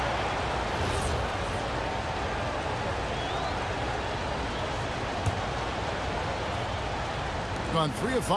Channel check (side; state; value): both; identical; correlation 1.00